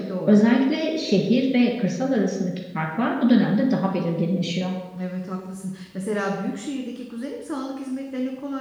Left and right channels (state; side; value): identical; both; correlation 1.00